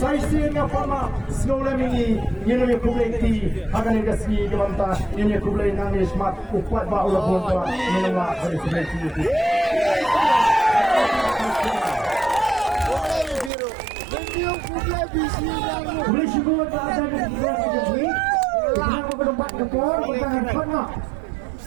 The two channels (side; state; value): left; drops out; at 13.5 s